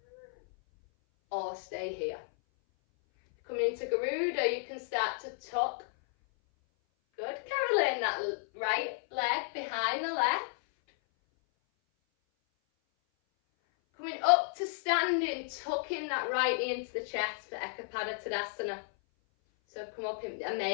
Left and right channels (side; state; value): right; silent; 56 dB below the other